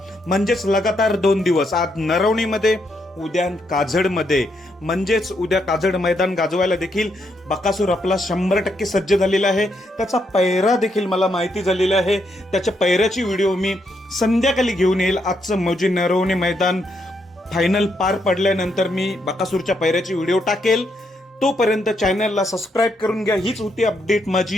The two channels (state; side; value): normal; both; correlation 0.78